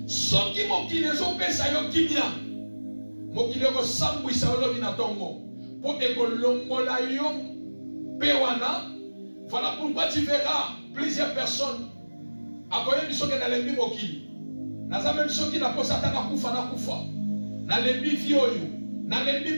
Ce qui mokile zopesa yo kimia. Mokile ko sambwisa olobi na tongo. Pour ekolongola yo pewana. Voilà pourquoi tu verras plusieurs personnes akoye biso ke na lembi mokili. Naza même ceux qui na posa tana kufa na kufa. Na lembi vi oyo, na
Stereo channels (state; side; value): inverted; both; correlation -1.00